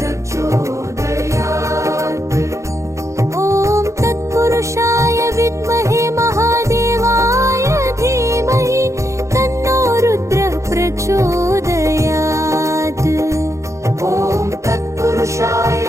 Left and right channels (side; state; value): left; late; 0.14 ms